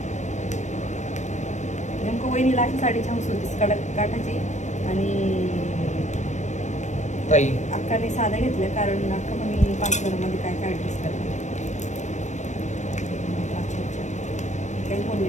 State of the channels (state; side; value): late; right; 0.34 ms